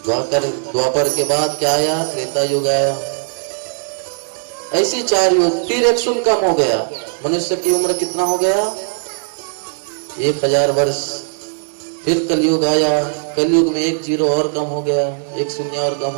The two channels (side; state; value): left; silent; digital silence